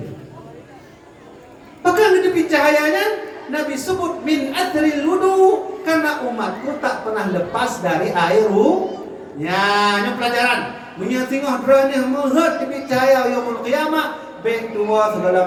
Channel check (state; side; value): identical; both; correlation 1.00